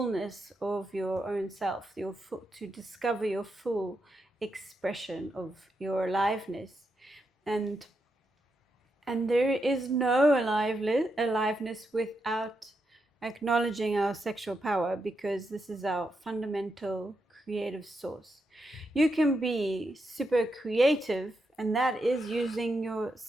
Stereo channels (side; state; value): both; normal; correlation 0.84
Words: of your own self, to discover your full expression of your aliveness. And there is no aliveness without acknowledging our sexual power, because this is our fundamental creative source. You can be super creative, and that is using your